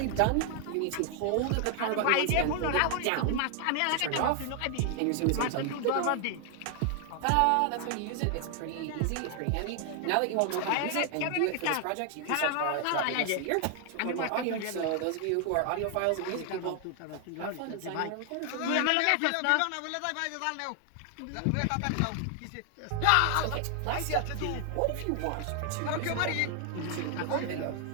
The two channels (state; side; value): different; both; correlation 0.00